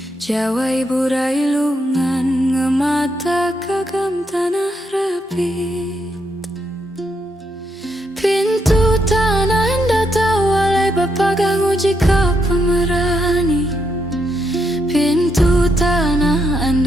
jawai burai lungan ngemata kagam tanah rapit. Pintu tanah anda tahu walai bapagang uji kau pemerani. Pintu tanah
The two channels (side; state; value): both; normal; correlation 0.78